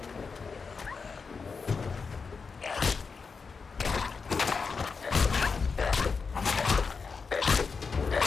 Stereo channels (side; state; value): right; quieter; 5.1 dB